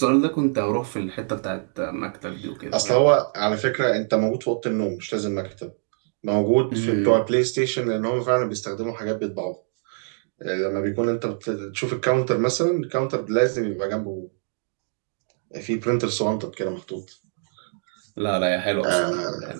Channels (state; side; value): silent; left; digital silence